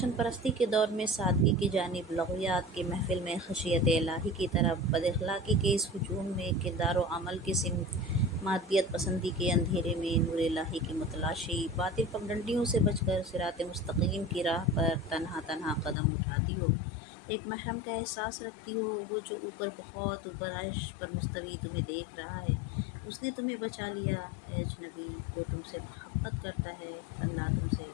پرستی کے دور میں سادگی کی جانب لغویات کی محفل میں خشیت الہی کی طرف، بد اخلاقی کے اس ہجوم میں کردار و عمل کی سمت، مادیت پسندی کے اندھیرے میں نور الہی کی متلاشی، باطل پگڈنڈیوں سے بچ کر صراط مستقیم کی راہ پر تنہا تنہا قدم اٹھاتی ہو، ایک محرم کا احساس رکھتی ہو، وہ جو اوپر بہت اوپر عرش پر مستوی تمہیں دیکھ رہا ہے، اس نے تمہیں بچا لیا۔ اے اجنبی، وہ تم سے محبت کرتا ہے، اللہ تم سے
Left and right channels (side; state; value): right; drops out; at 16.0 s